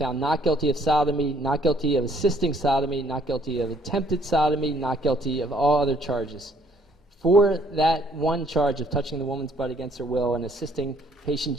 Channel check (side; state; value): both; normal; correlation 0.63